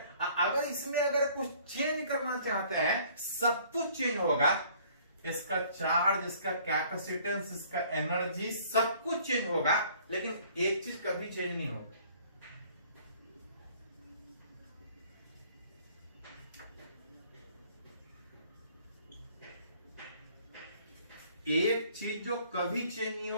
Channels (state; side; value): inverted; both; correlation -0.57